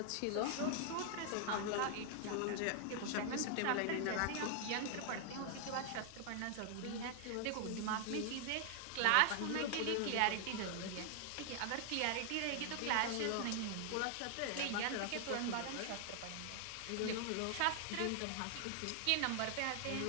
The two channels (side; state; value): both; different; correlation 0.00